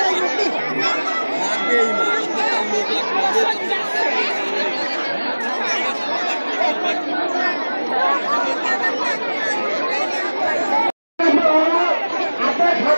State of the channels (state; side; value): inverted; both; correlation -1.00